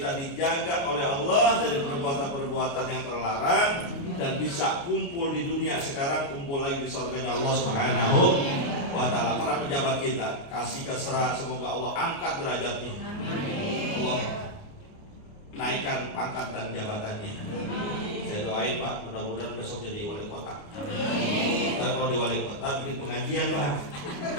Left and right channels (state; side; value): late; right; 29 ms